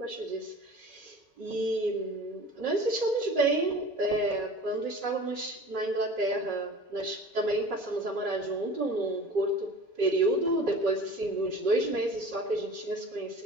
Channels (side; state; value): both; normal; correlation 0.41